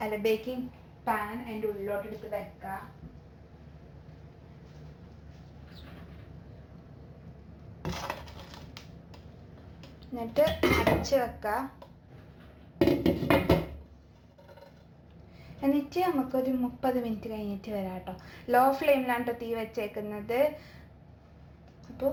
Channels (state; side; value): identical; both; correlation 1.00